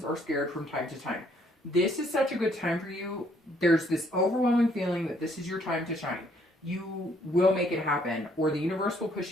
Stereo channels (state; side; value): normal; both; correlation 0.66